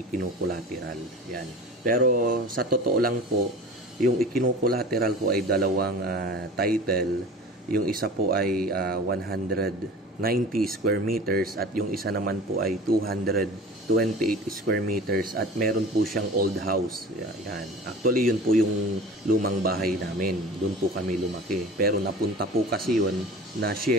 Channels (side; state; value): both; normal; correlation 0.39